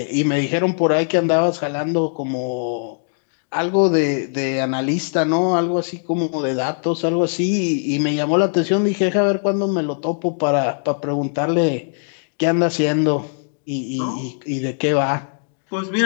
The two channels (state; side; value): silent; right; digital silence